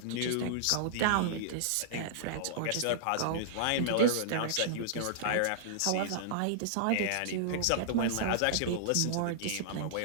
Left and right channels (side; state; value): both; different; correlation -0.02